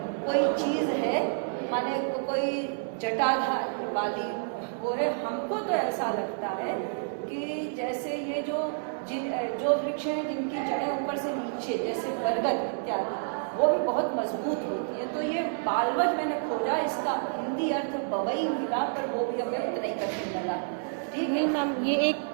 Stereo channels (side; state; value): left; silent; digital silence